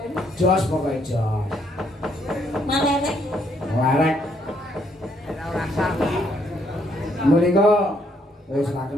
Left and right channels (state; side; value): normal; both; correlation 0.71